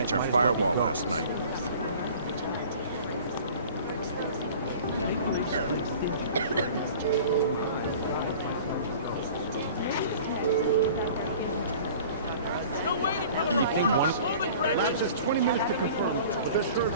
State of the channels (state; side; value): inverted; both; correlation -0.45